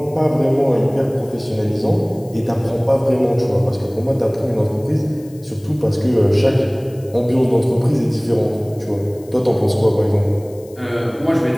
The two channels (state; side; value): noise; left; hiss, 26 dB below the sound